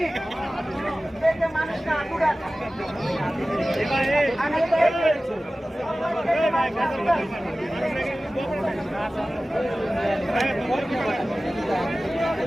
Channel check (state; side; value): normal; both; correlation 0.96